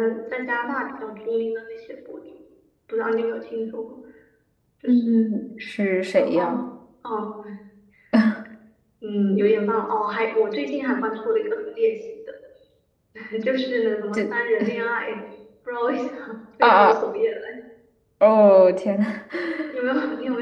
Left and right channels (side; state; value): both; identical; correlation 1.00